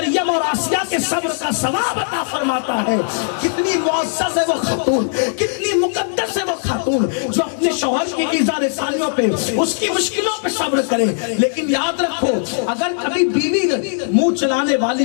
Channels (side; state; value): right; silent; digital silence